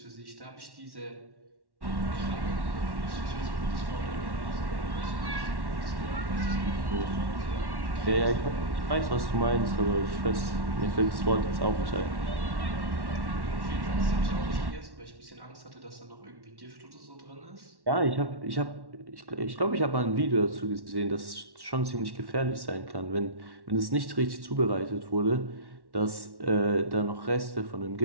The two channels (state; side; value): late; left; 1.1 ms